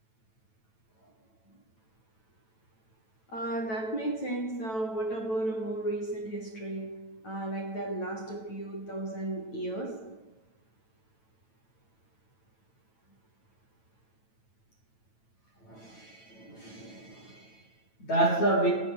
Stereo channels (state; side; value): late; right; 9.1 ms